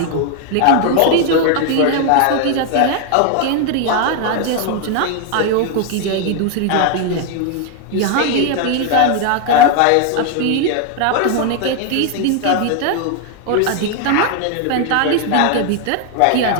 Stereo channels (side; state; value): both; different; correlation 0.01